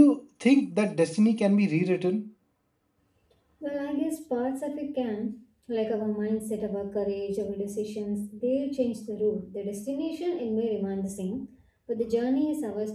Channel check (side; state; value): both; identical; correlation 1.00